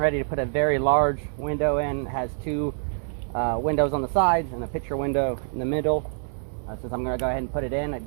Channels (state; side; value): silent; left; digital silence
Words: to put a very large window in. It has two windows on the sides and a picture window in the middle. Since I'm going to go ahead and put it in, I